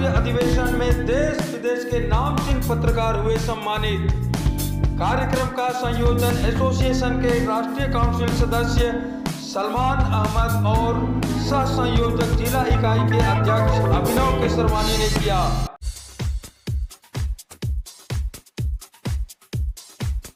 अधिवेशन में देश विदेश के नामचीन पत्रकार हुए सम्मानित। कार्यक्रम का संयोजन एसोसिएशन के राष्ट्रीय काउंसिल सदस्य सलमान अहमद और सह संयोजक जिला इकाई के अध्यक्ष अभिनव केसरवानी ने किया।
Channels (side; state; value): both; identical; correlation 1.00